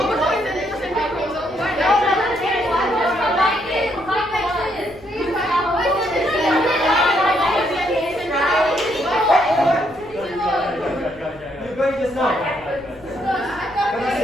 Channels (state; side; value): noise; left; rumble, 24 dB below the sound